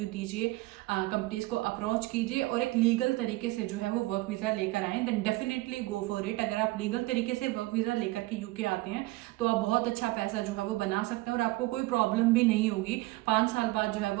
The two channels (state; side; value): quieter; left; 20.4 dB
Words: दीजिए, कंपनीज को अप्रोच कीजिए और एक लीगल तरीके से जो है वो वर्क वीज़ा लेकर आएँ, then definitely go for it. अगर आप लीगल तरीके से वर्क वीज़ा लेकर के यूके आते हैं तो आप बहुत अच्छा पैसा जो है वो बना सकते हैं और आपको कोई प्रॉब्लम भी नहीं होगी। 5 साल बाद जो है